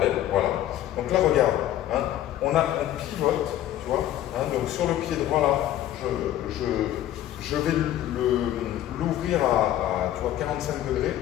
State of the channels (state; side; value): quieter; right; 12.6 dB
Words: voilà. Donc là, regarde, hein, on pivote, tu vois. Hein, donc sur le pied droit là, je vais l'ouvrir à tu vois, 45 degrés